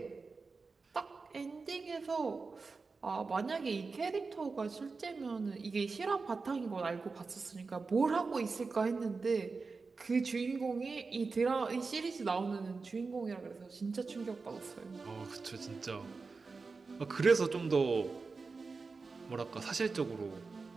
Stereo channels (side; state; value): left; quieter; 4.3 dB